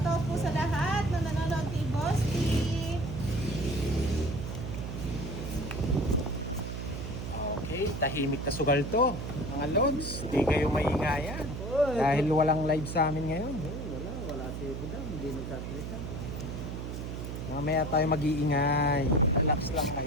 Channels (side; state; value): right; noise; hum, 6 dB below the sound